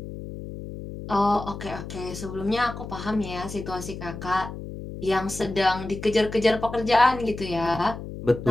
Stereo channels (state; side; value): noise; left; hum, 10 dB below the sound